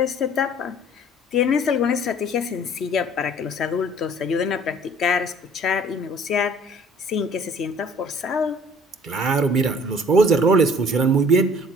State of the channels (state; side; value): normal; both; correlation 0.53